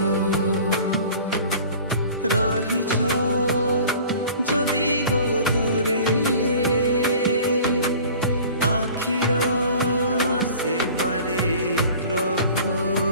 রহিছ যদি গো দূরে আখির সেপারে প্রভু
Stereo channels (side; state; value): both; inverted; correlation -0.45